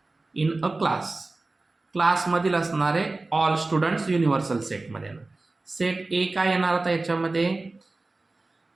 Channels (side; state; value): left; quieter; 3.3 dB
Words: इन अ क्लासमधील असणारे ऑल स्टुडंट्स युनिव्हर्सल सेटमध्ये येणार. सेट ए काय येणार आता याच्यामध्ये,